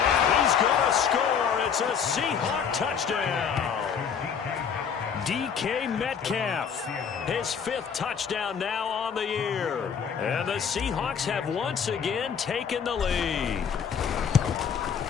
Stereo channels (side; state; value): right; quieter; 7.1 dB